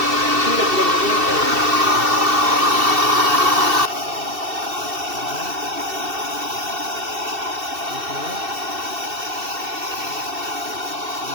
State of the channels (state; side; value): late; left; 2.7 ms